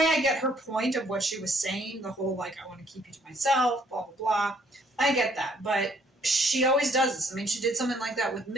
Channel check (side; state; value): both; normal; correlation 0.65